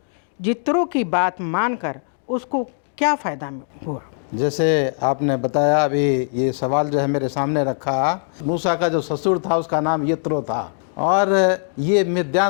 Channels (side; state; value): right; silent; digital silence